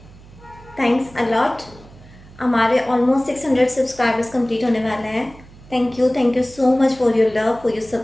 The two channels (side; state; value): right; noise; hum, 22 dB below the sound